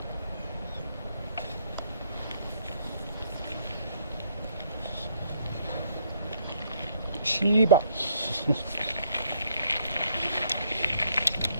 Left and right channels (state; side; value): inverted; both; correlation -0.69